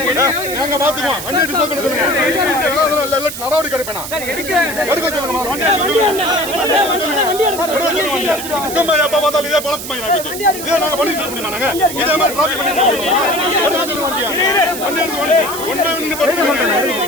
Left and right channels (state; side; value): noise; right; hiss, 8 dB below the sound